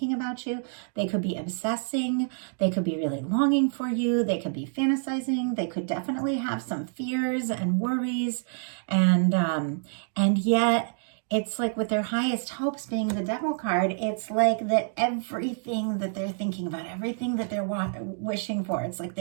about you. They could be obsessing. They could be really longing for you. They could be fantasizing. They could definitely have some fears and worries, and yet it's like with their highest hopes being the Devil card, it's like that everything that they're thinking about, everything that they're wishing for, it's like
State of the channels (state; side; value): silent; left; digital silence